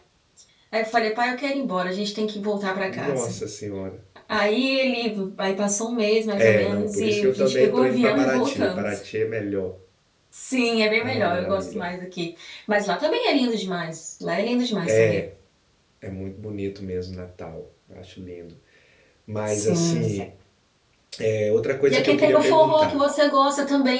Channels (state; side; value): identical; both; correlation 1.00